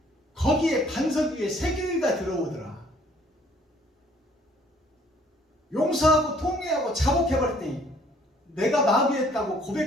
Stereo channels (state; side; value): normal; both; correlation 0.60